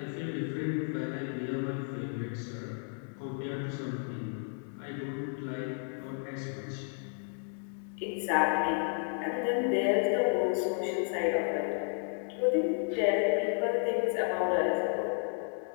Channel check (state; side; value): silent; right; 56 dB below the other